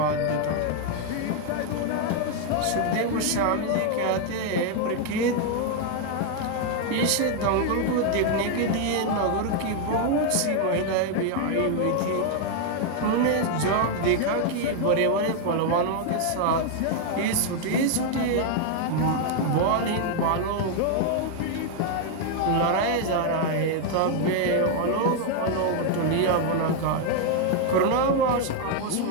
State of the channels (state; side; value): different; both; correlation 0.00